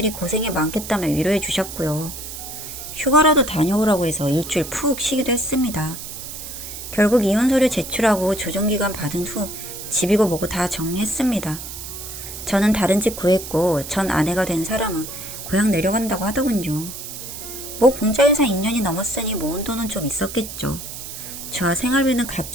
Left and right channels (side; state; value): right; noise; hiss, 10 dB below the sound